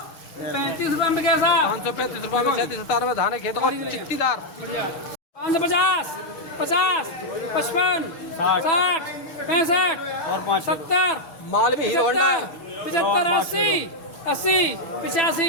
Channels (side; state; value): right; late; 6.5 ms